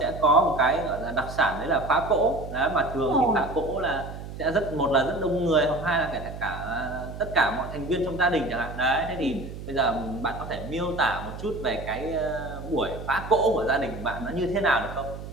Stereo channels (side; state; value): right; noise; hum, 10 dB below the sound